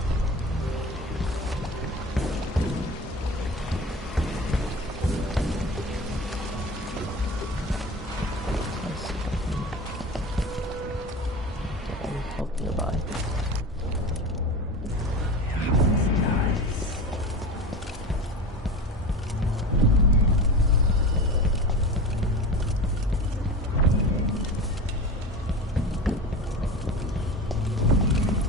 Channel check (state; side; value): normal; both; correlation 0.30